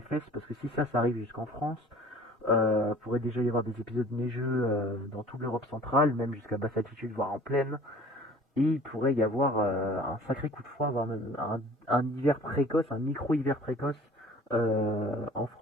parce que si ça arrive jusqu'en France, pourrait déjà y avoir des épisodes neigeux dans toute l'Europe centrale, même jusqu'à basse altitude, voire en plaine. Et il pourrait y avoir un sacré coup de froid, voire même un hiver précoce, un micro-hiver précoce en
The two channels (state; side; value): normal; both; correlation 0.48